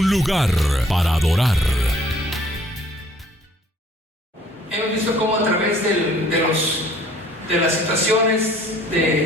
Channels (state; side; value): normal; both; correlation 0.57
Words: lugar para adorar. Hemos visto cómo a través de las situaciones